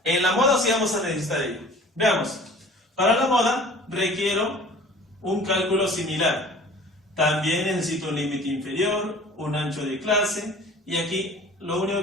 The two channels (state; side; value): normal; both; correlation 0.46